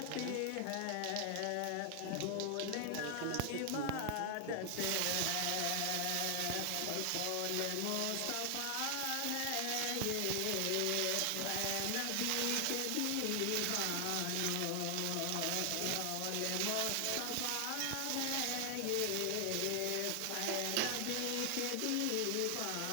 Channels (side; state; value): both; different; correlation 0.00